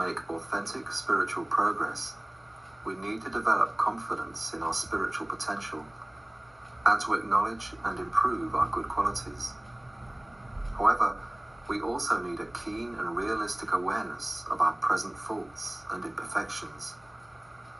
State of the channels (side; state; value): left; noise; hum, 29 dB below the sound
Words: authentic spiritual progress, we need to develop confidence in our spiritual potential and to acknowledge and improve our good qualities. However, we also need a keen and realistic awareness of our present faults and imperfections.